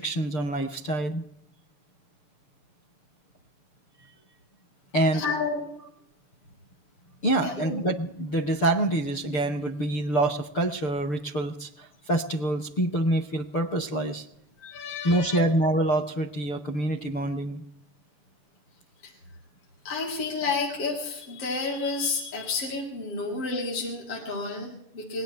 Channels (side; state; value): right; late; 6.7 ms